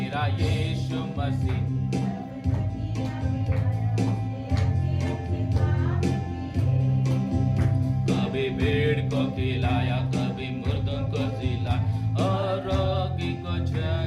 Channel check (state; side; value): identical; both; correlation 1.00